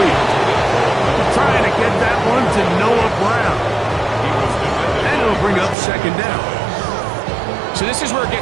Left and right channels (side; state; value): left; drops out; at 5.8 s